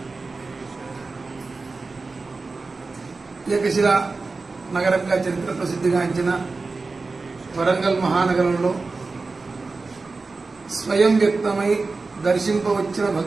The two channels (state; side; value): quieter; left; 3.9 dB